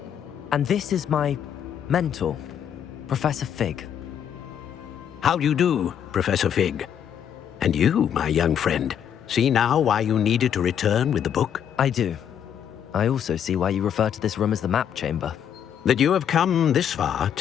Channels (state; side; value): quieter; right; 9.0 dB